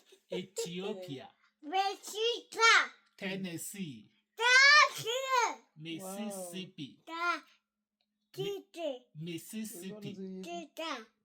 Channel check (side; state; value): both; identical; correlation 1.00